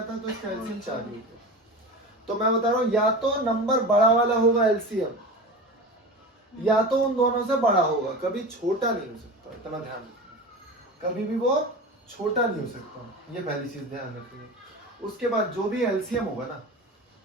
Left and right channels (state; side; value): normal; both; correlation 0.30